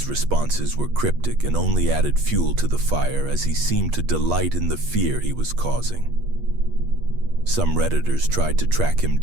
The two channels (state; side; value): late; left; 8.4 ms